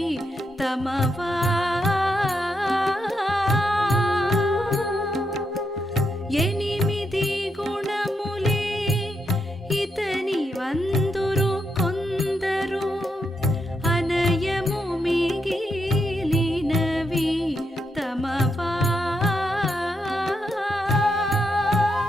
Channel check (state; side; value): normal; both; correlation 0.82